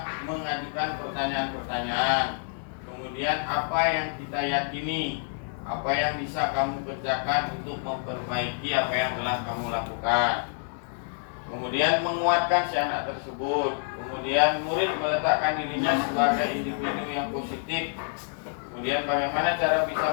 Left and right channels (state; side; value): silent; right; 60 dB below the other